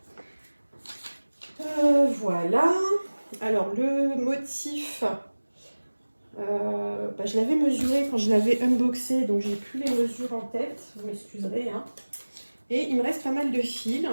Voilà. Alors, le motif, Je l'avais mesuré quand je l'avais unboxé, donc j'ai plus les mesures en tête, vous m'excuserez. Hein. Et il me reste pas mal de fils,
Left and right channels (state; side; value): inverted; both; correlation -1.00